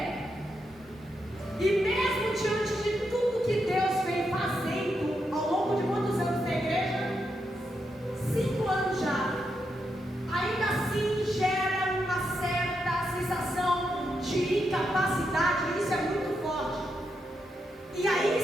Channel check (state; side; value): normal; both; correlation 0.83